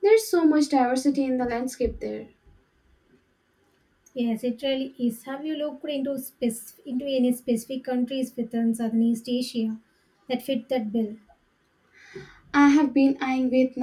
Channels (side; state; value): both; identical; correlation 1.00